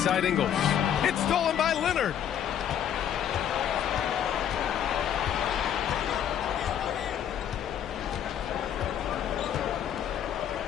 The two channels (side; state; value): right; quieter; 9.6 dB